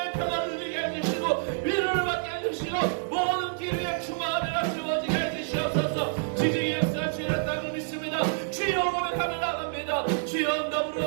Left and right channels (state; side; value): silent; left; digital silence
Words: 평안을 누리게 해주시고 위로를 받게 해주시고 모든 기류의 충만하라 채워지게 해주시옵소서. 지지의 역사 주의 땅을 믿습니다. 주여 고백하며 나갑니다. 주여